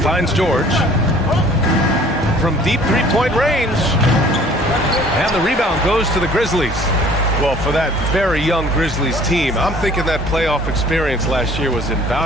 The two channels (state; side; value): normal; both; correlation 0.53